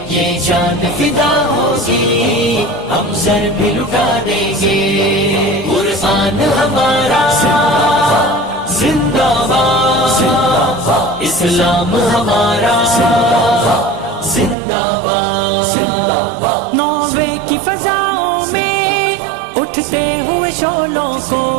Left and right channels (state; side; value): drops out; left; at 14.6 s